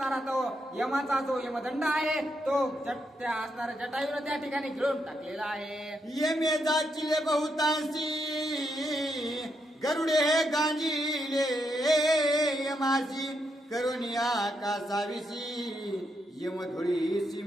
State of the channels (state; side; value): normal; both; correlation 0.81